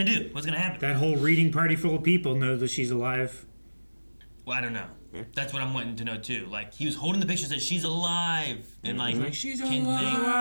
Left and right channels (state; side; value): inverted; both; correlation -1.00